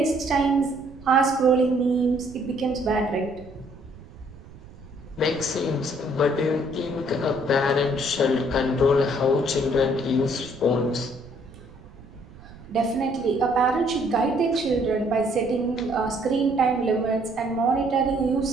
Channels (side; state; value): right; noise; rumble, 19 dB below the sound